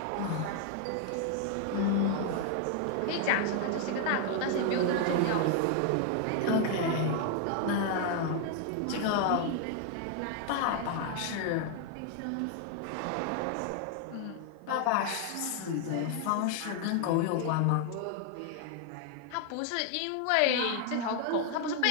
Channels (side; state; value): both; different; correlation 0.00